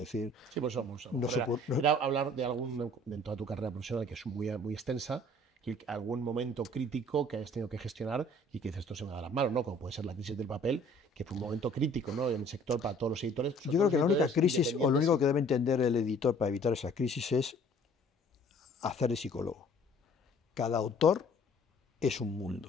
decir, sí, pues era hablar de de toda tu carrera profesional, que es muy extensa, que algún momento crítico que hayas tenido que gestionar y que dices, esto se me da las manos, ¿no? Como puede ser la crisis del papel, que fue un momento crítico, ¿no?, en el sector para todos los editores. Yo creo que la única crisis, o lo único que debe entender el editor para evitar esa crisis, es hacer de psicólogo. Cada autor es un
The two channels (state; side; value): normal; both; correlation 0.54